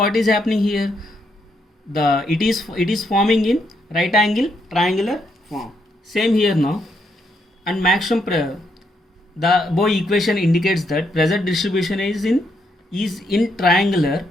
is happening here? It is forming in right angle triangular form. Same here now. And maximum the Boy equation indicates that pressure distribution is in triangular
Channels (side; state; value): both; normal; correlation 0.77